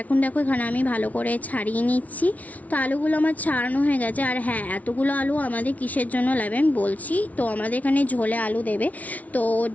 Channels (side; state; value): right; late; 0.071 ms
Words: এখন দেখো এখানে আমি ভালো করে ছাড়িয়ে নিচ্ছি। তো আলুগুলো আমার ছাড়ানো হয়ে গেছে। আর হ্যাঁ, এতগুলো আলু আমাদের কিসের জন্য লাগবে আমি বলছি। তো আমাদের এখানে ঝোলে আলু দেবে, তো ওর